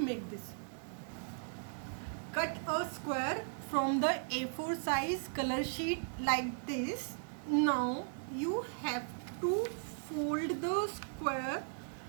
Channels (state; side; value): silent; left; 53 dB below the other